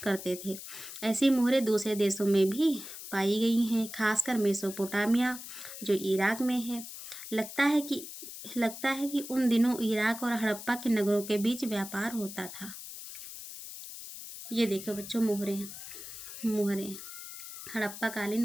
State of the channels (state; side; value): noise; left; hiss, 11 dB below the sound